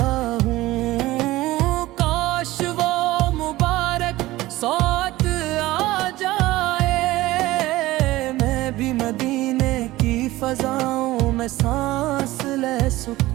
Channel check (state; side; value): quieter; left; 17.8 dB